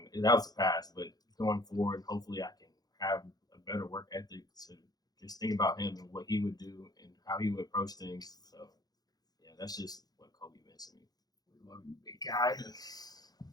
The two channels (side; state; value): right; late; 0.19 ms